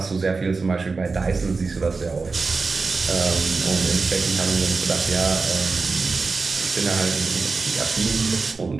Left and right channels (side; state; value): left; quieter; 4.2 dB